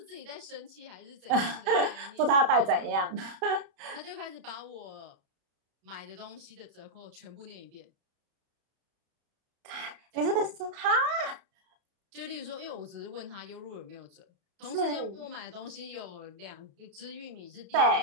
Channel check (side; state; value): left; late; 32 ms